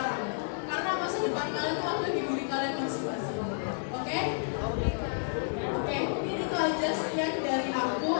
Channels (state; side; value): silent; right; digital silence